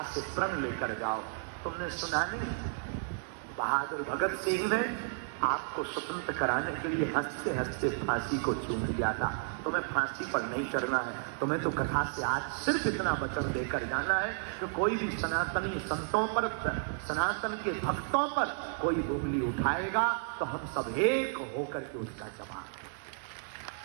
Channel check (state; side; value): silent; left; digital silence